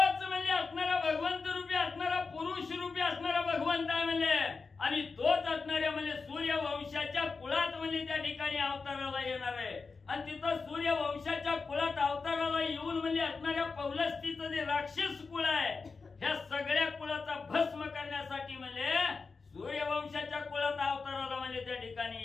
म्हणजे असणारा भगवंत रूपी असणारा पुरुष रूपी असणारा भगवंत आहे म्हणजे, आणि तोच असणाऱ्या म्हणजे सूर्यवंशाच्या कुळात म्हणजे त्या ठिकाणी अवताराला येणार आहे. आणि तिथं सूर्यवंशाच्या कुळात अवताराला येऊन म्हणजे असणाऱ्या पौलस्तीचं जे राक्षस कुळ आहे, ह्या सगळ्या कुळाचा भस्म करण्यासाठी म्हणजे सूर्यवंशाच्या कुळात अवताराला म्हणजे त्या ठिकाणी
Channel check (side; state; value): right; quieter; 4.5 dB